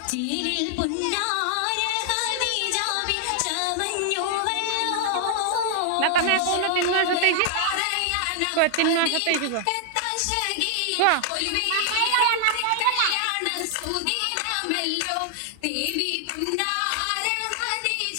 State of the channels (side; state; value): both; different; correlation -0.01